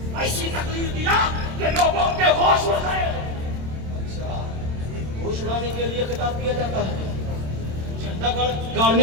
ऐसी तकलीफ दिया कि लोगों के होश उड़ गए। अच्छा, होश उड़ाने के लिए खिताब किया जाता है, झंडा गाड़ने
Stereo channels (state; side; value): late; left; 27 ms